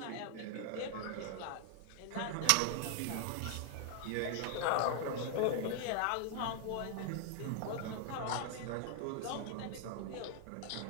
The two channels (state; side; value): different; both; correlation 0.00